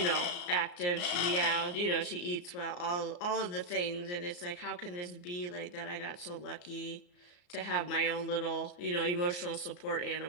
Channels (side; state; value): right; late; 34 ms